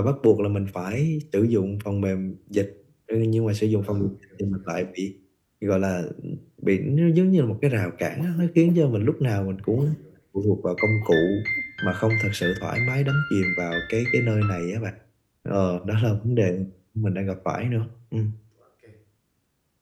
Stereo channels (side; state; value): both; identical; correlation 1.00